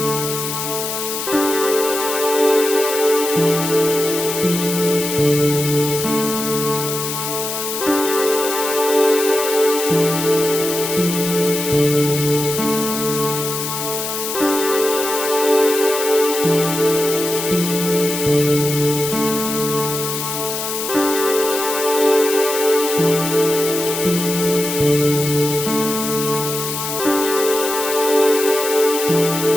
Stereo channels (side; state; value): left; noise; hiss, 4 dB below the sound